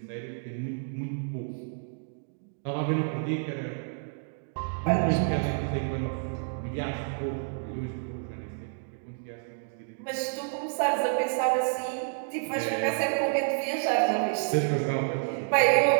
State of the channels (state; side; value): silent; left; digital silence